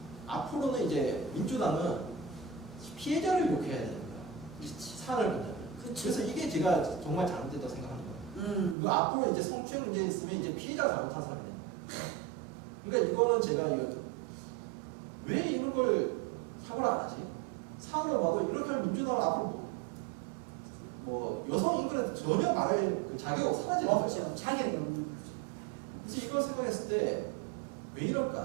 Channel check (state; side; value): drops out; left; at 8.8 s